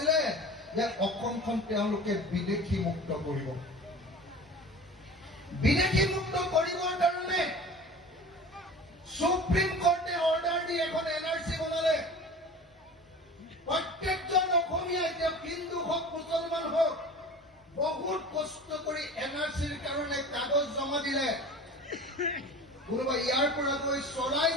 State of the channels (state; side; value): normal; both; correlation 0.38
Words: যে অসমখন তেওঁলোকে বিদেশী মুক্ত কৰিব। বিদেশী মুক্ত কৰিবৰ কাৰণে সুপ্ৰিম কোৰ্টে অৰ্ডাৰ দি এখন এনআৰচি বনালে। প্ৰত্যেকজন অসমীয়া, এতিয়া হিন্দু হওক মুছলমান হওক, বহুত কষ্ট কৰি এনআৰচিৰ কাৰণে কাগজ জমা দিলে। কোনোবা ইয়াৰ পৰা গৈ